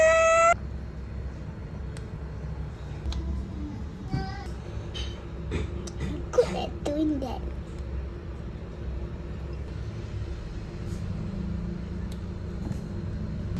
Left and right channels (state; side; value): identical; both; correlation 1.00